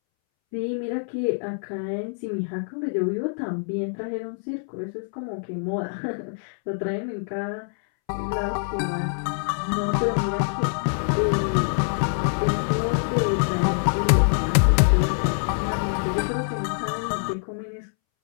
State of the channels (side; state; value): right; silent; 62 dB below the other